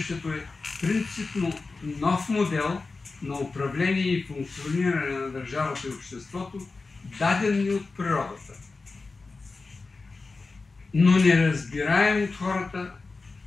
е принципно нов модел на управление и функциониране на държавата и обществото, даден ни от природата, но неразбираем от хората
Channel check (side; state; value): right; quieter; 3.9 dB